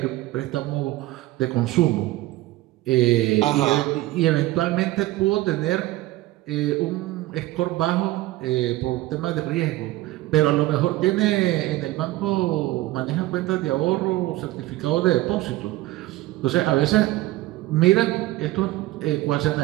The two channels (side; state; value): left; quieter; 17.3 dB